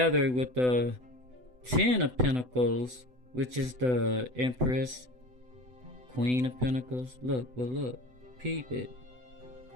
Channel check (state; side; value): late; left; 8.0 ms